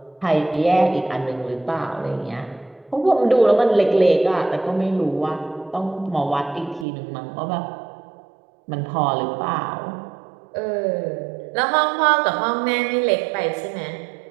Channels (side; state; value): left; drops out; at 6.9 s